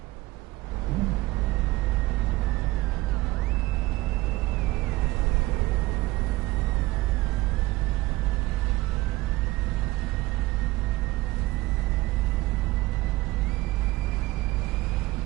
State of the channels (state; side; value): quieter; left; 19.2 dB